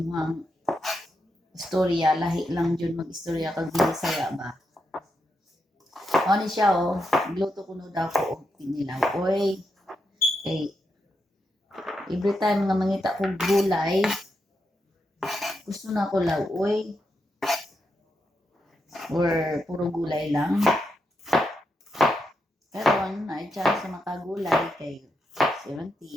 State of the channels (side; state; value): both; normal; correlation 0.84